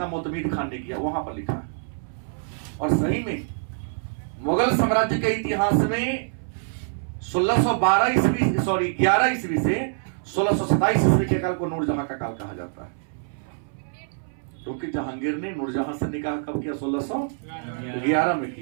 मोतमीद खान ने किया वहां पर लिखा है। और सही में मुगल साम्राज्य के इतिहास में 11 ईस्वी से 1627 ईस्वी के काल को नूरजहां का काल कहा जाता है। क्योंकि जहांगीर ने नूरजहां से निकाह कब किया? 1611 में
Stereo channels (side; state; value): left; silent; 62 dB below the other